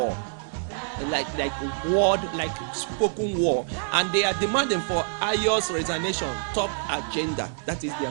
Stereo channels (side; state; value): left; silent; digital silence